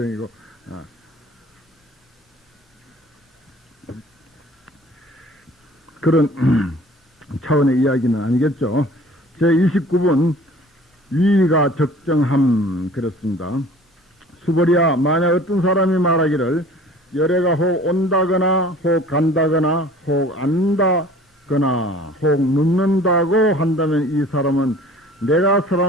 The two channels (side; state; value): both; normal; correlation 0.48